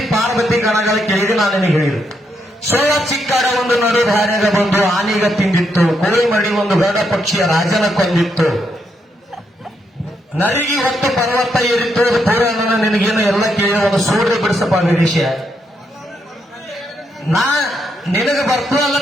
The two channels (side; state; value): both; normal; correlation 0.79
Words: ಪಾರ್ವತಿ ಗಣಗಳ ಕೇಳಿದ್ರೆ ನಾನು ನಿನಗೆ ಹೇಳಿದ್ರು. ಸೋಳ ಚಿಕ್ಕಾಡ ಒಂದು ನಡು ಧಾರ್ಯಾಗ ಬಂದು ಆನೆಗ ತಿಂದಿತ್ತು, ಕೋಳಿ ಮಡಿ ಒಂದು ಗರುಡ ಪಕ್ಷಿಯ ರಾಜನ ಕೊಂದಿತ್ತು, ನರಿಗೆ ಹೊತ್ತು ಪರ್ವತ ಏರಿತ್ತು, ಪುರಾಣ ನಿನಗೇನು ಎಲ್ಲ ಕೇಳಿ ಒಂದು ಸೂರ್ಯ ಬಿಡಿಸಪ್ಪ ನಿರೀಶ. ನಾ ನಿನಗೆ ಬರ್ತು